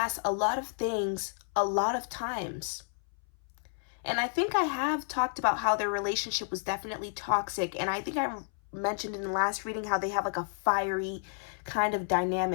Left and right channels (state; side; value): silent; right; 57 dB below the other